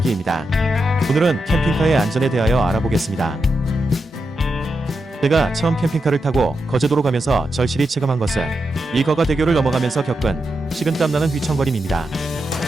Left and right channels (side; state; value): both; normal; correlation 0.86